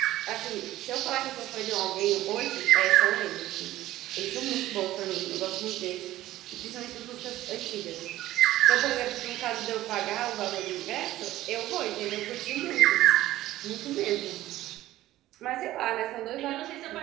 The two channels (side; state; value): left; quieter; 15.2 dB